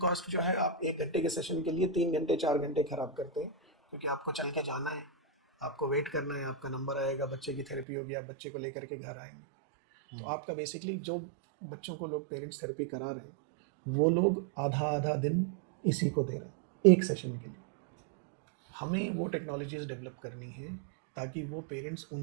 जो है, आप 1 घंटे के सेशन के लिए 3 घंटे 4 घंटे खराब करते हैं, क्योंकि आपको चल के जाना है, आपको वेट करना है, आपका नंबर आएगा, बच्चे की थेरेपी होगी, आप बच्चे को लेकर के घर आएंगे। तो आपका बेसिकली जो बच्चों को लोग पेरेंट्स थेरेपी करा रहे हैं, वो लोग आधा आधा दिन इसी को दे रहे हैं एक सेशन के लिए। हमें वो टेक्नोलॉजीज डेवलप करनी है ताकि वो पेरेंट्स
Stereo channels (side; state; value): left; drops out; at 7.9 s